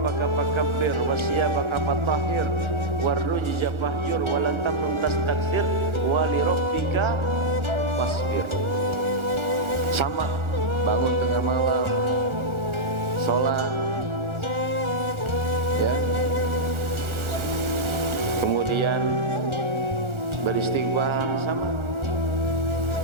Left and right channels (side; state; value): left; late; 1.4 ms